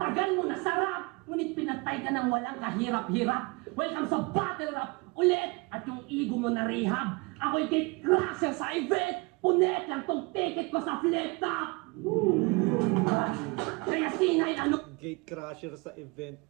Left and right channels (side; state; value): left; quieter; 27.3 dB